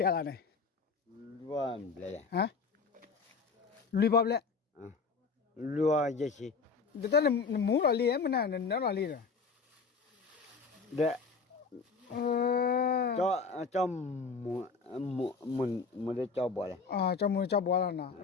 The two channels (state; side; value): quieter; right; 4.9 dB